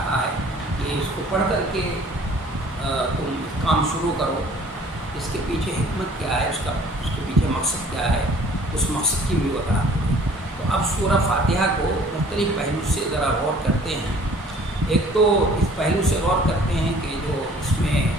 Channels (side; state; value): both; normal; correlation 0.53